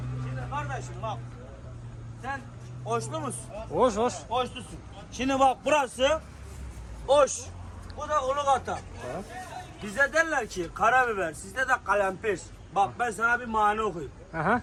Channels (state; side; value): identical; both; correlation 1.00